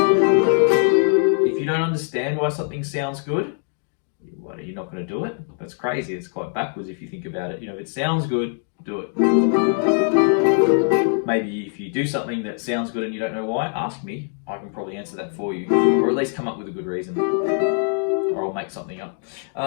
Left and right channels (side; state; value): right; silent; 56 dB below the other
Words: If you don't understand why something sounds good, what, are you not going to do it? That's crazy. It's quite backwards if you think about it. You know, if it sounds good, do it. maybe if you do something that sounds good and you don't know why, ask me. I can probably answer that for you, or at least come up with a good reason, or I'll make something up.